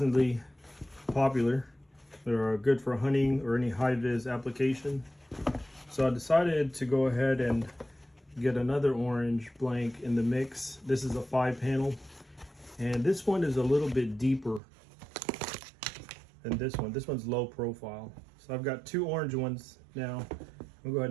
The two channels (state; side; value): drops out; left; at 14.6 s